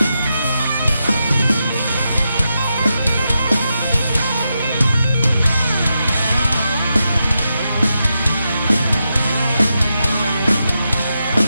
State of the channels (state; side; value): inverted; both; correlation -0.86